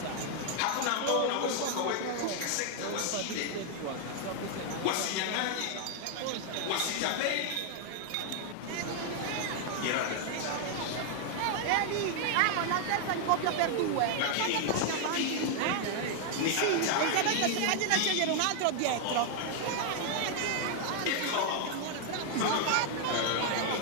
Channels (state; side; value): different; both; correlation 0.00